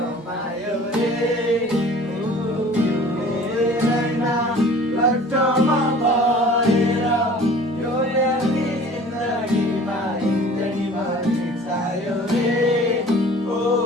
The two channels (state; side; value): normal; both; correlation 0.47